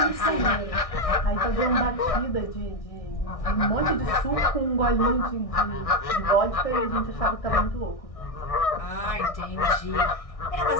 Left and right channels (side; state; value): right; late; 1.6 ms